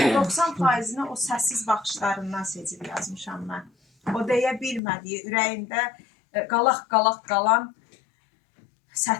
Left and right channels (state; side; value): drops out; right; at 4.8 s